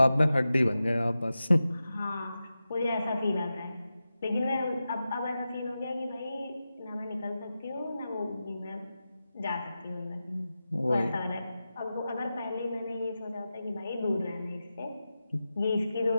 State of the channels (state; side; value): inverted; both; correlation -0.92